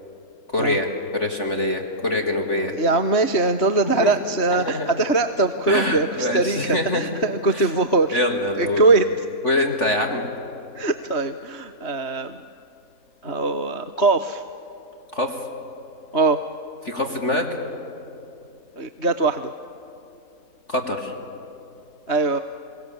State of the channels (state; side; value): late; right; 3.4 ms